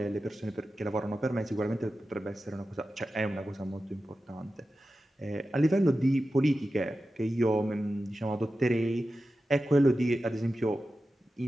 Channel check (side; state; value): both; normal; correlation 0.93